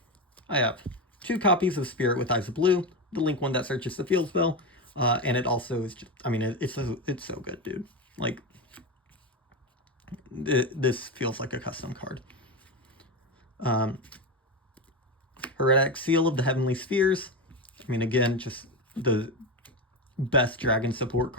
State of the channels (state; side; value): normal; both; correlation 0.16